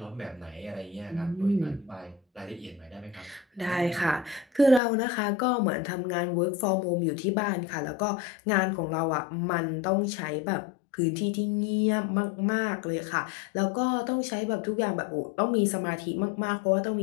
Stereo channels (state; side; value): drops out; right; at 4.8 s